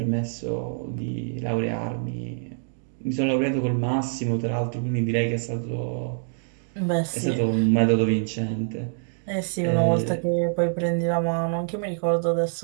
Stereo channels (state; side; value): silent; left; digital silence